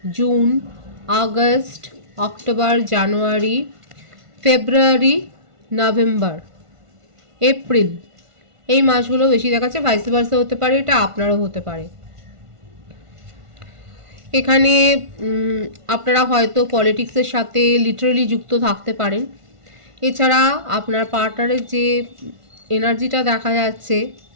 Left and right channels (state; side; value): late; left; 1.5 ms